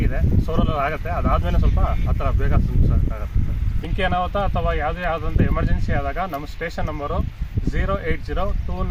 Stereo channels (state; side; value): identical; both; correlation 1.00